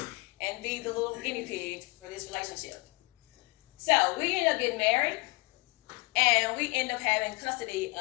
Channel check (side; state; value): right; quieter; 26.2 dB